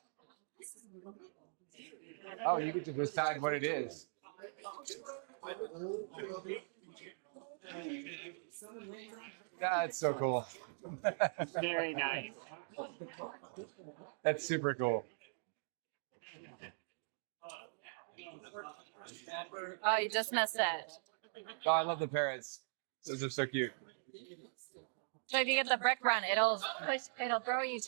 Oh, you get to decide what it is. That's so cool. Very nice. That's super cool. Oh, you just missed it. Oh, I love the parrots. Those are so cute. So if you get the brick run, it'll throw you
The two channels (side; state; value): left; silent; digital silence